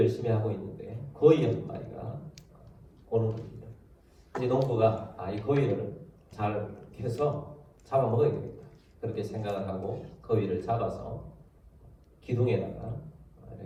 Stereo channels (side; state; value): both; identical; correlation 1.00